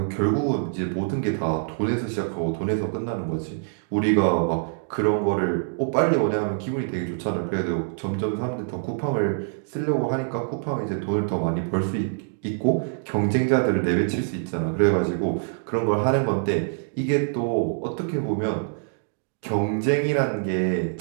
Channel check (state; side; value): silent; left; digital silence